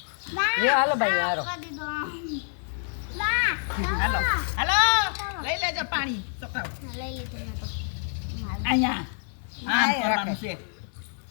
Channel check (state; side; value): silent; right; 60 dB below the other